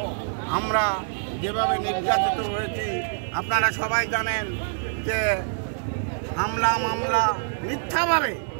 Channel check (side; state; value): left; silent; digital silence